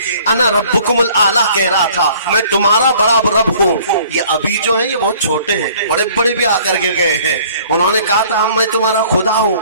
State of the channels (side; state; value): both; inverted; correlation -0.55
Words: انا ربکم الاعلی کہہ رہا تھا میں تمہارا بڑا رب ہوں. یہ ابھی جو ہیں یہ بہت چھوٹے ہیں, بڑے بڑے بھی آ کر کے گئے ہیں, انہوں نے کہا تھا میں تمہارا خدا ہوں,